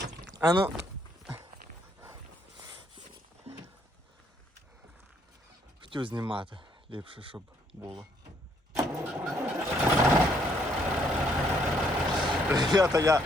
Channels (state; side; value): normal; both; correlation 0.69